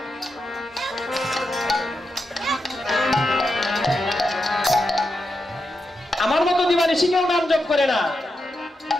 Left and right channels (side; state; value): both; normal; correlation 0.87